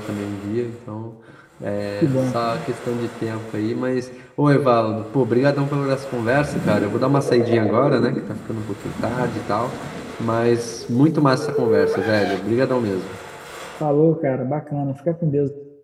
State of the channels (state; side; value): identical; both; correlation 1.00